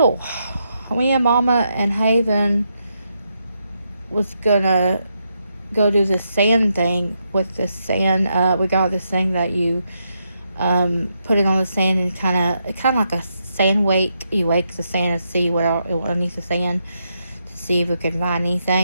Me and Mama and Haven was gonna go do the sand thing with the sand. We got this thing that you put it on the sand and kind of like a sand wake. You wake the sand and see what underneath the sand to see if we can find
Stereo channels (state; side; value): inverted; both; correlation -0.81